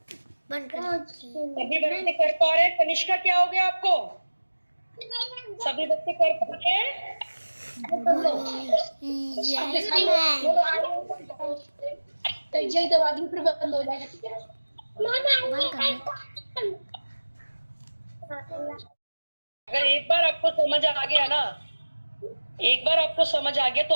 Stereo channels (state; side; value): inverted; both; correlation -1.00